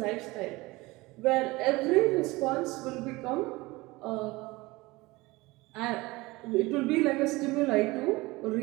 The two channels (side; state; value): left; quieter; 21.7 dB